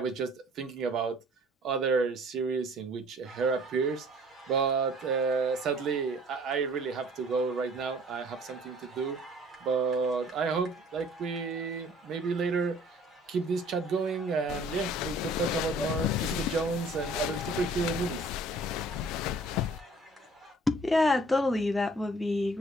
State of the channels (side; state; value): both; normal; correlation 0.54